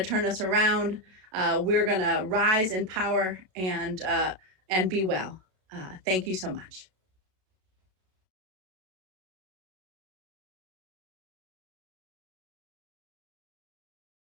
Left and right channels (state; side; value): late; left; 32 ms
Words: turn us around. We're gonna rise in power and be well. Thank you so much.